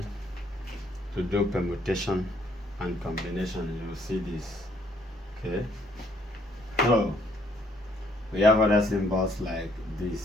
to do permutation and combination, you will see this. Okay. So we have other symbols like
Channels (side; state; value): both; normal; correlation 0.66